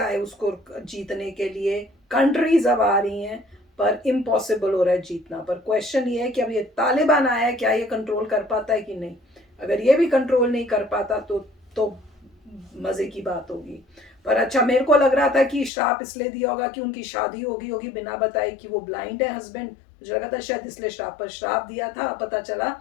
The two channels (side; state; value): right; drops out; at 15.7 s